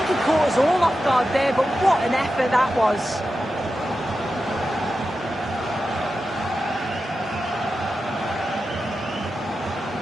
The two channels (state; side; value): normal; both; correlation 0.91